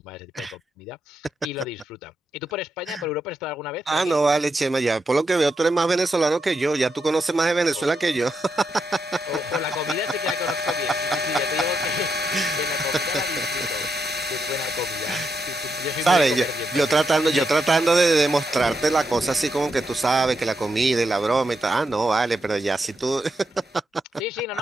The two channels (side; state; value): both; normal; correlation 0.83